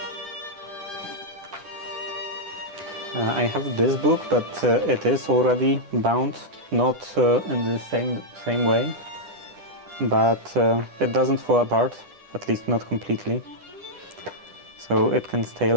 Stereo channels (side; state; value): left; late; 10 ms